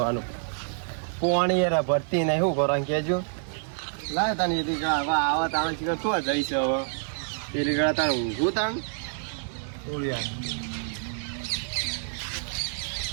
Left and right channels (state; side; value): silent; left; digital silence